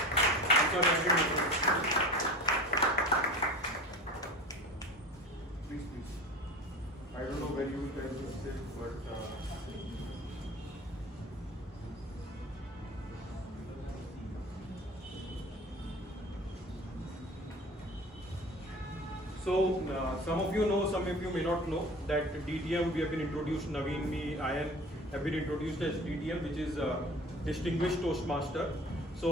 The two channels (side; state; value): both; normal; correlation 0.38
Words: I'm sorry. I didn't. Please. I don't know when you will tell this thing, but. So some of you know, some of you may not know that DTM we have been introduced. Naveen, me, Ayan have been introduced as DTM, which is Distinguished Toastmaster.